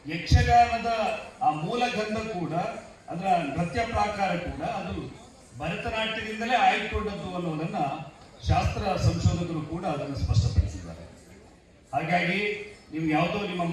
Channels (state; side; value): identical; both; correlation 1.00